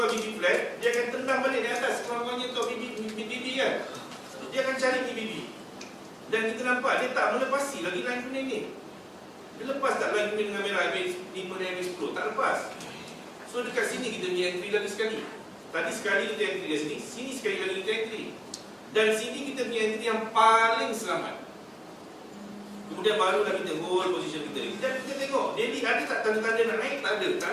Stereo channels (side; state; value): both; identical; correlation 1.00